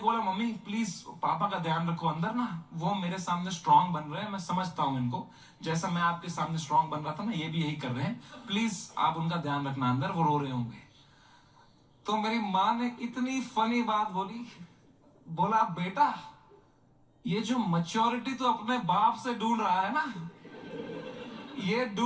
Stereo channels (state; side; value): identical; both; correlation 1.00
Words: बोला मम्मी प्लीज पापा का ध्यान रखो, अंदर ना वो मेरे सामने स्ट्रांग बन रहे हैं, मैं समझता हूं इनको, जैसा मैं आपके सामने स्ट्रांग बन रहा था ना, ये भी यही कर रहे हैं, प्लीज आप उनका ध्यान रखना, अंदर वो रो रहे होंगे। तो मेरी माँ ने इतनी फनी बात बोली, बोला बेटा ये जो मैच्योरिटी तो अपने बाप से ढूंढ रहा है ना, ये